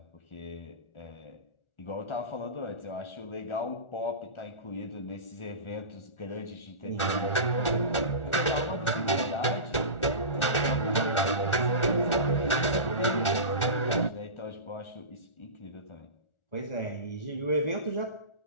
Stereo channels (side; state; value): right; late; 1.4 ms